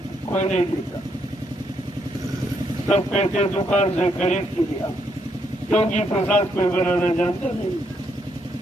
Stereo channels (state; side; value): normal; both; correlation 0.75